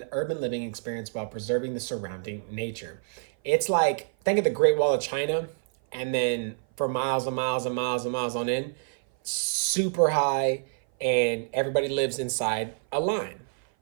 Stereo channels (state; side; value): silent; left; 56 dB below the other